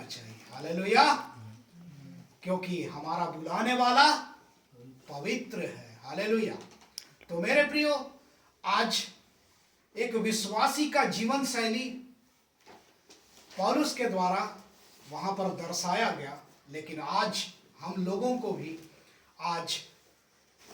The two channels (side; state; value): both; identical; correlation 1.00